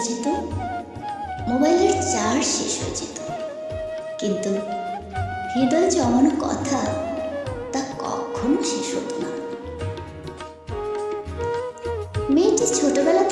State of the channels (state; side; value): identical; both; correlation 1.00